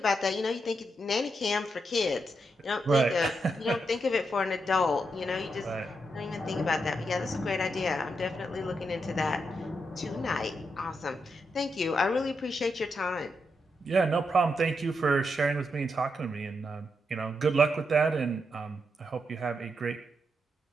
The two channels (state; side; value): normal; both; correlation 0.83